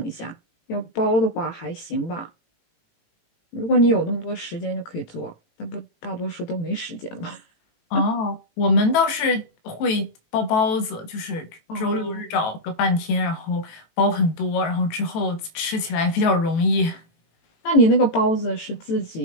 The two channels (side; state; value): right; late; 18 ms